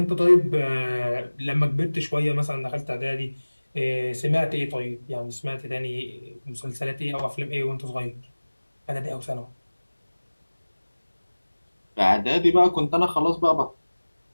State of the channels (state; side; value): inverted; both; correlation -1.00